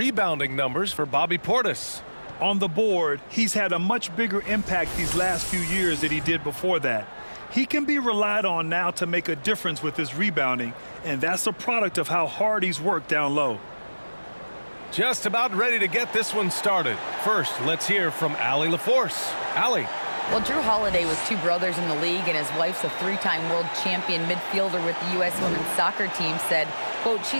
numbers for Bobby Portis. On the board, he's had a much bigger impact these last few years than he did before that. He can be relied on now to make a difference with his rebounding, and that's a product of how hard he's worked down low. Just about ready to get this one started. First, let's hear from Allie LaForce. Allie. Well, Drew Holiday was two brothers in the league, and his wife's a three-time world champion midfielder with the U.S. women's soccer team, said, quote,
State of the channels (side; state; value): both; inverted; correlation -1.00